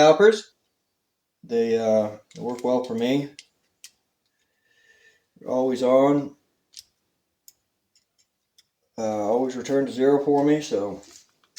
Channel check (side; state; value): both; identical; correlation 1.00